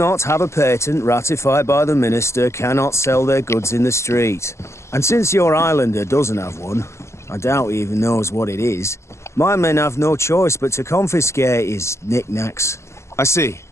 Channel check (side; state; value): right; late; 0.13 ms